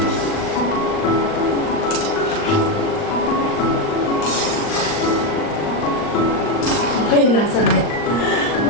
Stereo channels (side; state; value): right; late; 39 ms